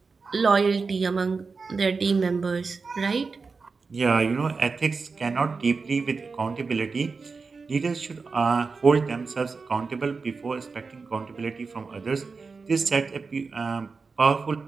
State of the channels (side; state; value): left; quieter; 4.5 dB